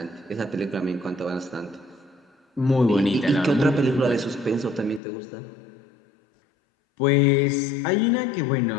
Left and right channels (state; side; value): drops out; right; at 5.0 s